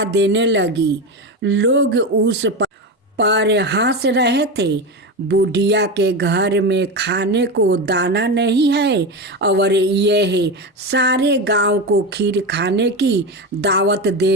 देने लगी। लोग उस पर हंस रहे थे। बुढ़िया के घर में खाने को दाना नहीं है और यह सारे गांव को खीर खाने की दावत दे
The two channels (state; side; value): normal; both; correlation 0.19